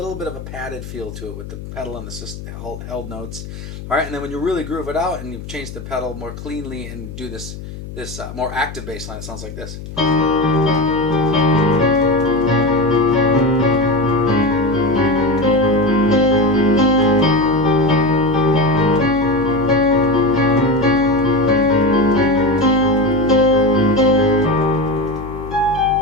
bit of a padded feel to it with the pedal and the held notes. All right, and then when you really groove it out and you change the pedal more cleanly and do this more active bass line, it sounds like this.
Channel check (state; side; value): noise; left; hum, 12 dB below the sound